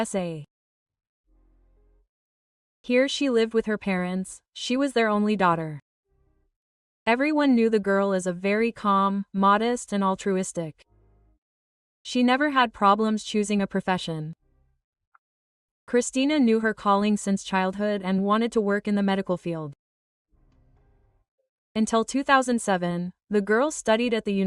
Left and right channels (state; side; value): identical; both; correlation 1.00